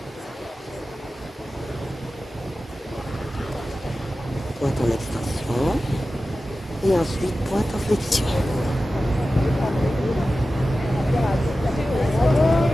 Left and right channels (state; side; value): normal; both; correlation 0.94